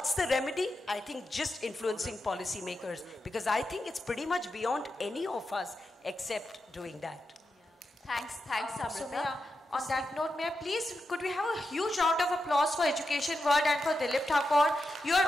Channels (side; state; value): both; normal; correlation 0.88